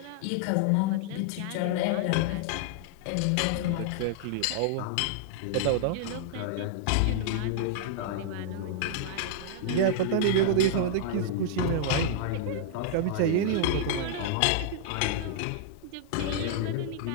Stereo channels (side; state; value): both; different; correlation -0.01